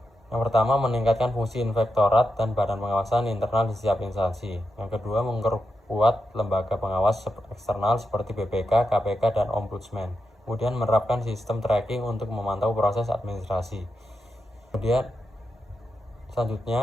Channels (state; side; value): normal; both; correlation 0.87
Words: Yang pertama, meningkatkan fungsi inspektorat dan badan pengawasan internal di setiap instansi. Yang kedua, memperkuat lembaga pengawas eksternal seperti BPK, KPK, dan Ombudsman. Kemudian menerapkan sistem tracking untuk memantau proses administrasi. Kemudian